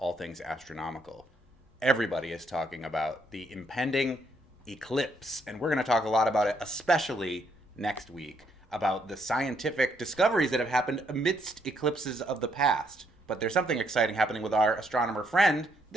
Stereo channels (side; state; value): both; normal; correlation 0.72